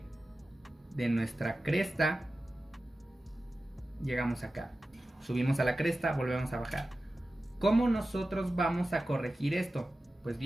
de nuestra cresta llegamos acá, subimos a la cresta, volvemos a bajar. ¿Cómo nosotros vamos a corregir esto? Pues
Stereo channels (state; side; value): normal; both; correlation 0.94